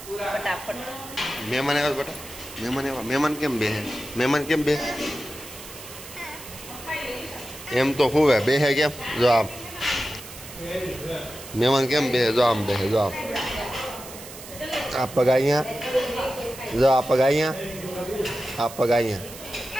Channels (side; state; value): right; noise; hiss, 14 dB below the sound